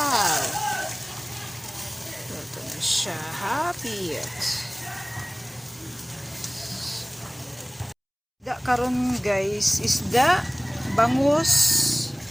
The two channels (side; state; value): both; identical; correlation 1.00